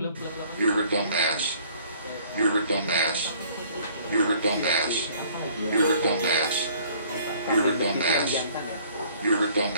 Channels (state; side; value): inverted; both; correlation -0.56